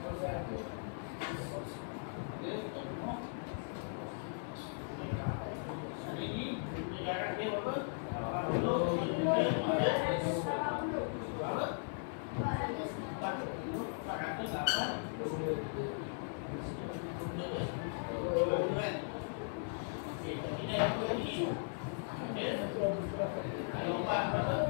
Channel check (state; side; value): silent; right; digital silence